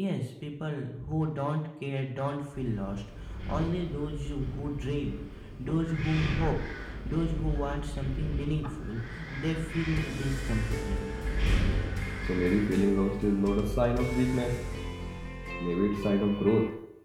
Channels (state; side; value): identical; both; correlation 1.00